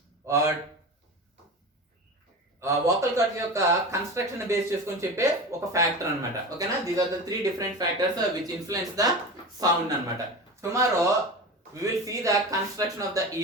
వోకల్ కార్డ్ యొక్క కన్స్ట్రక్షన్ బేస్ చేసుకొని చెప్పే ఒక ఫ్యాక్టర్ అనమాట. ఓకేనా? These are the 3 different factors which influence the sound అనమాట. Tomorrow we will see the construction of the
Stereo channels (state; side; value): normal; both; correlation 0.29